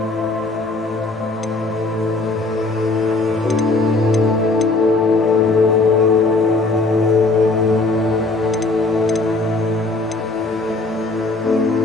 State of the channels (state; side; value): quieter; right; 3.3 dB